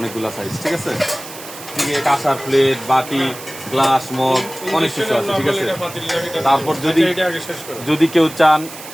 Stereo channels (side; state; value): right; noise; hiss, 14 dB below the sound